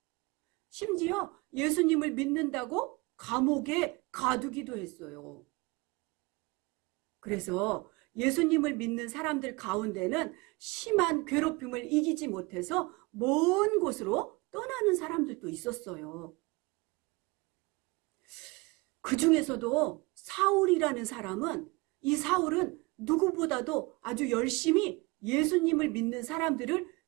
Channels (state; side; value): quieter; left; 25.1 dB